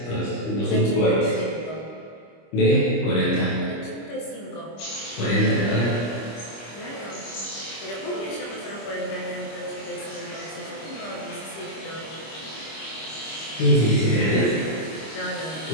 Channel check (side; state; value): right; late; 25 ms